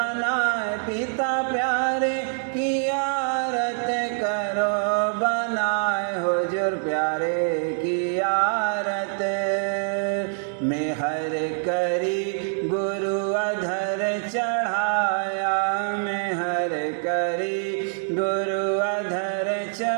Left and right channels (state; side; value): silent; left; digital silence